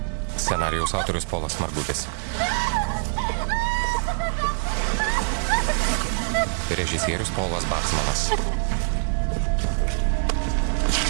Scenarijaus autorius Polas Margutis. Režisierius Polas Baksmanas.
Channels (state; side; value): silent; left; 58 dB below the other